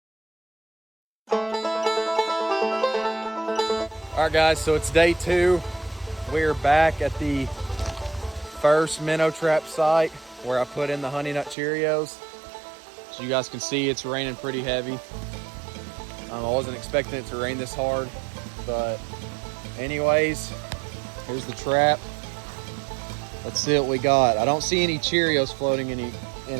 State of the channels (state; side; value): drops out; left; at 11.6 s